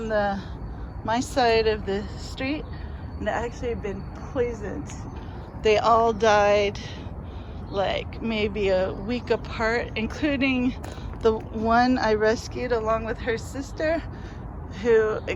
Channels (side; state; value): both; identical; correlation 1.00